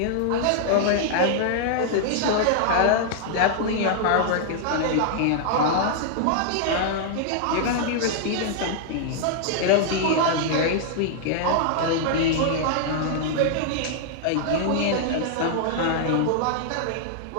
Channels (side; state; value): both; different; correlation -0.01